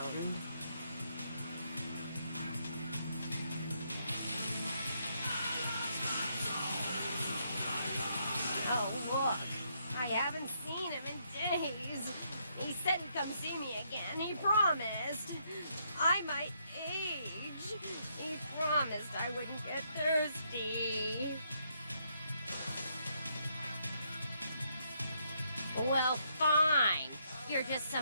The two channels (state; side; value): inverted; both; correlation -0.75